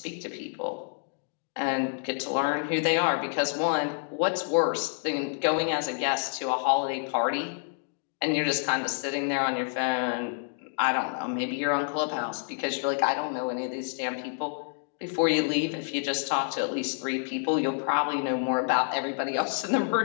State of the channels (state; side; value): silent; right; 59 dB below the other